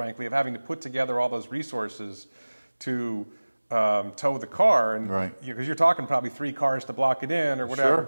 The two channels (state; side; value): inverted; both; correlation -1.00